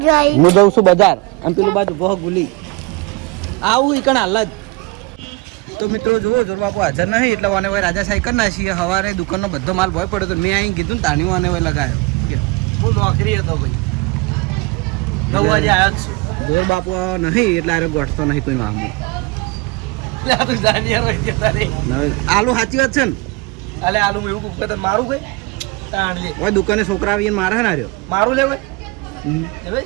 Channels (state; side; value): quieter; left; 25.4 dB